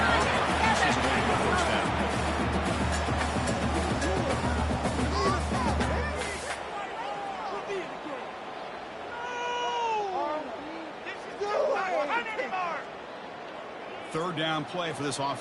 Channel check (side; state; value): both; identical; correlation 1.00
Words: Pieces away to the first down. Third down play for this